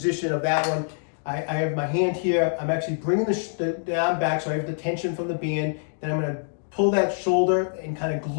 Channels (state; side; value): silent; right; digital silence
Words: of that one, I have my hand here. I'm actually bringing the arm back, so I have the tension from the band. Then I'm going to pull that shoulder and kind of